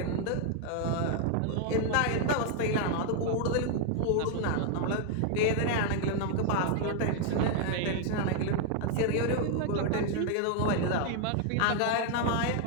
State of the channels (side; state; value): both; different; correlation 0.00